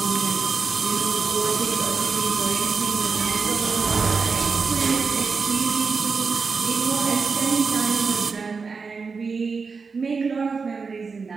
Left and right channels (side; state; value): left; quieter; 4.9 dB